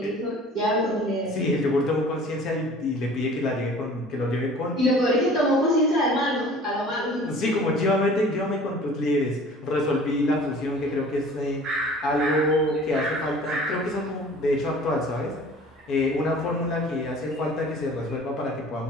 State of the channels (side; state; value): both; normal; correlation 0.47